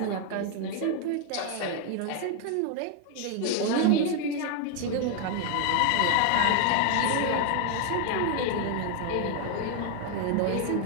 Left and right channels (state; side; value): different; both; correlation 0.00